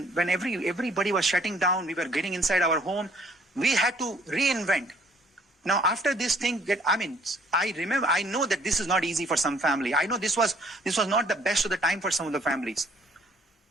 everybody was shutting down, we were getting inside our home, we had to reinvent. Now, after this thing, I know that this is not easy for some family. I know this was not the best of the time for some of the families.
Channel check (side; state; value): both; normal; correlation 0.60